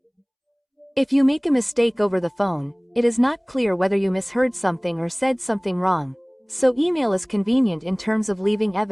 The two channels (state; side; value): identical; both; correlation 1.00